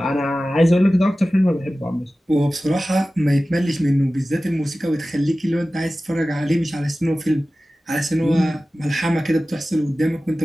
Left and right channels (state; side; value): normal; both; correlation 0.96